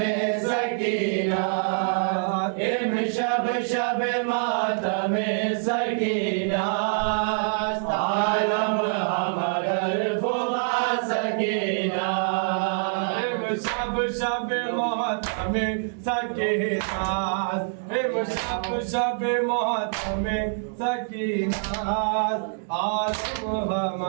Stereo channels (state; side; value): silent; left; digital silence